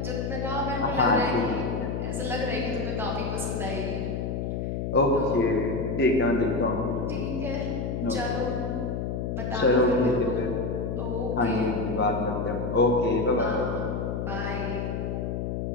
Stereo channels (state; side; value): noise; left; hum, 2 dB below the sound